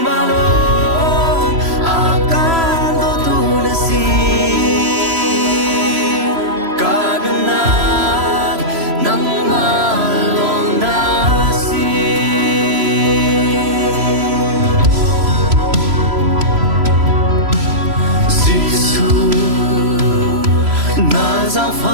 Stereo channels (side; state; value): left; late; 3.0 ms